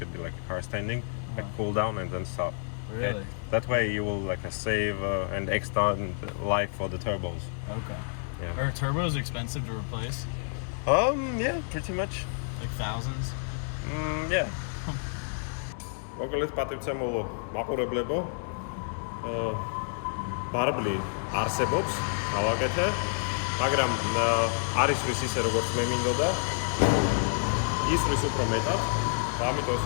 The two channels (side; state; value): right; silent; 58 dB below the other